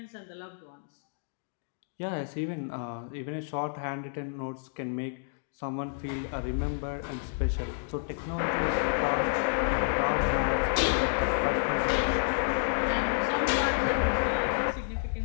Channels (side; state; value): right; silent; digital silence